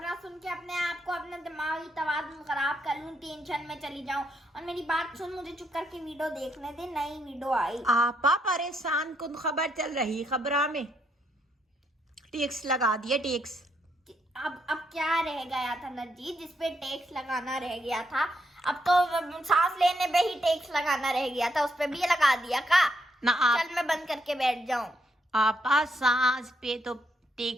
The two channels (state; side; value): normal; both; correlation 0.76